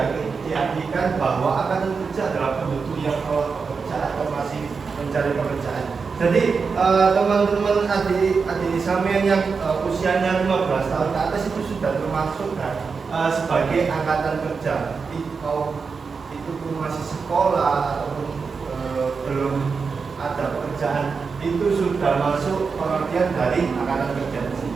diartikan bahwa akan bekerja dalam penduduk yang telah bekerja atau masih mencari pekerjaan. Jadi teman-teman adik sampean yang usianya 15 tahun ke atas itu sudah termasuk kan, sebagai angkatan kerja. Itu pun masih sekolah ataupun belum ada pekerjaan, itu sudah masuk pengertian dari angkatan kerja di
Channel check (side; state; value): left; quieter; 5.1 dB